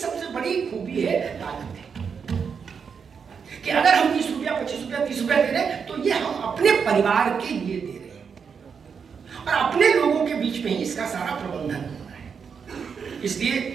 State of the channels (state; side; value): quieter; left; 6.3 dB